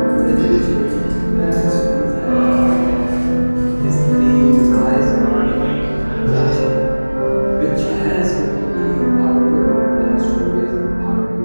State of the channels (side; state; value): both; inverted; correlation -1.00